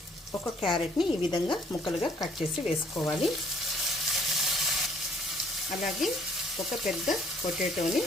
ఒక క్యారెట్ని ఈ విధంగా ముక్కలుగా కట్ చేసి వేసుకోవాలి. అలాగే ఒక పెద్ద పొటాటోని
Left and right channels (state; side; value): normal; both; correlation 0.61